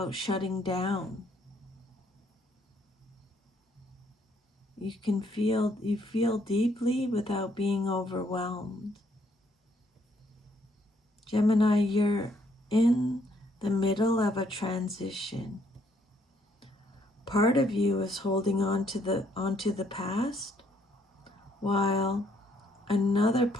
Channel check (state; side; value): normal; both; correlation 0.69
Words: shutting down. You feel deeply without being overwhelmed. Gemini, you're in the middle of a transition. Part of you is holding onto the past, while another